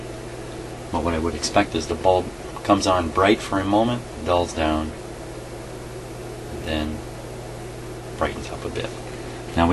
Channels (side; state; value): both; identical; correlation 1.00